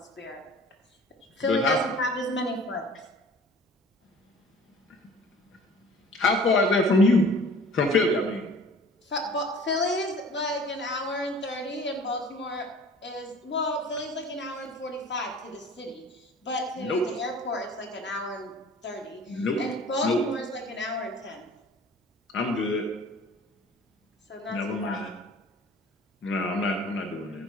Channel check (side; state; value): both; normal; correlation 0.47